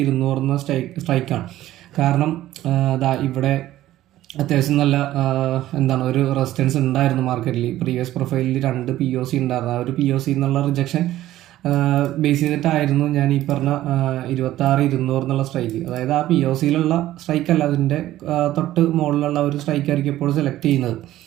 എന്ന സ്ട്രൈക്കാണ്. കാരണം ഇവിടെ അത്യാവശ്യം നല്ല ഒരു റെസിസ്റ്റൻസ് ഉണ്ടായിരുന്നു മാർക്കറ്റിൽ. പ്രീവിയസ് പ്രൊഫൈലിൽ 2 POC ഉണ്ടായിരുന്നു. ആ ഒരു POC എന്നുള്ള റിജക്ഷൻ ബേസ് ചെയ്തിട്ടായിരുന്നു ഞാൻ ഈ പറഞ്ഞ 26,200 എന്നുള്ള സ്ട്രൈക്ക്. അതായത് ആ POCയിലുള്ള സ്ട്രൈക്കല്ല, അതിൻ്റെ തൊട്ട് മുകളിലുള്ള ഒരു സ്ട്രൈക്കായിരിക്കും എപ്പോഴും സെലക്ട് ചെയ്യുന്നത്.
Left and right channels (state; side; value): quieter; left; 14.4 dB